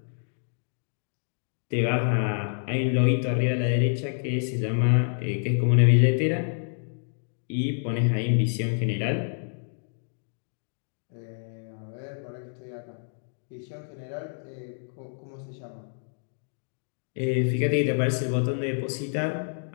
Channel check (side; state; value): right; silent; digital silence